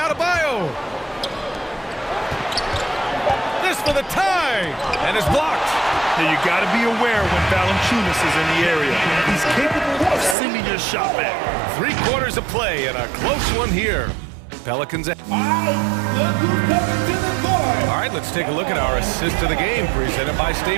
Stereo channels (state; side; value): drops out; left; at 10.4 s